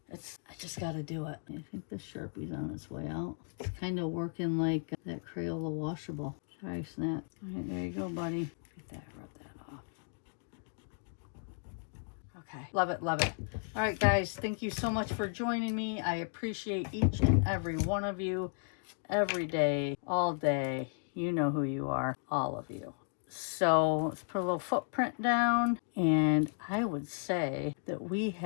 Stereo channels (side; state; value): right; silent; 55 dB below the other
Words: I just got to do it. I think the Sharpie's on its way out. It's kind of working like that Crayola washable. Sorry, Snap. All right, there you go, buddy. Get that, rub that off. Okay, love it, love it. All right, guys, thank you so much for joining me. I appreciate each and every one of you every day, all day. You know who you are, all of you. So let's put a little footprint down, and I would say that we